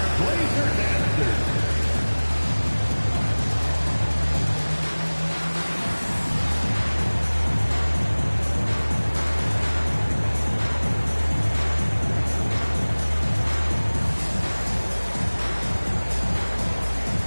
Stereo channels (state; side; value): inverted; both; correlation -1.00